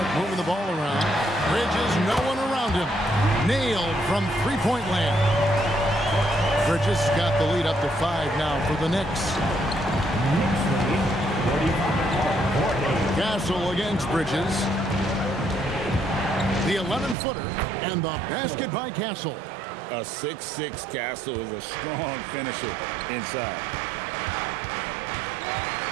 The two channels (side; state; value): left; drops out; at 17.2 s